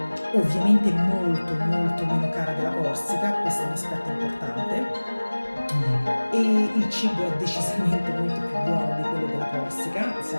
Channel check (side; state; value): both; inverted; correlation -1.00